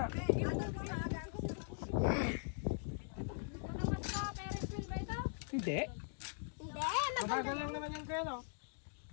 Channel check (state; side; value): silent; right; digital silence